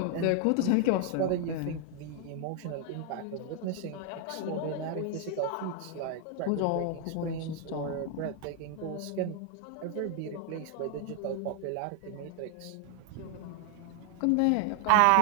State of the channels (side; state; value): both; different; correlation 0.00